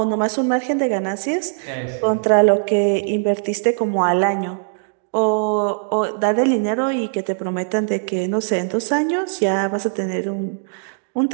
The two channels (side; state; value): left; silent; digital silence